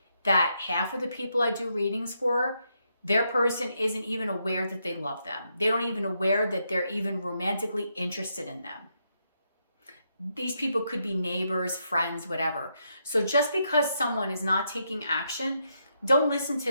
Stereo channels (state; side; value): inverted; both; correlation -0.80